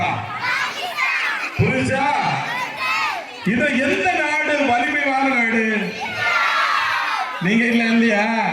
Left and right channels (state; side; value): identical; both; correlation 1.00